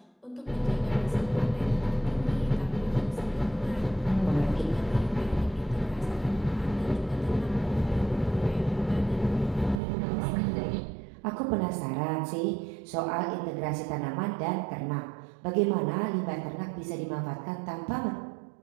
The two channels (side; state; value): left; drops out; at 9.8 s